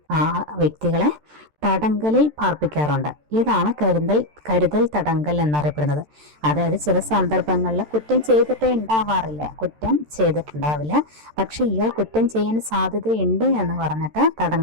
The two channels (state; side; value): late; left; 13 ms